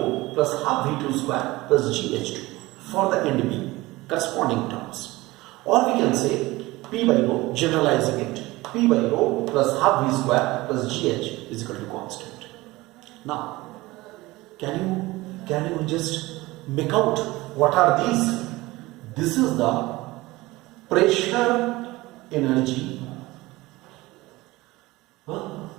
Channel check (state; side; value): quieter; left; 20.1 dB